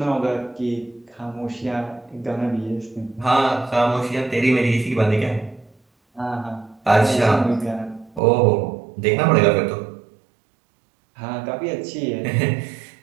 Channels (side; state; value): left; drops out; at 8.2 s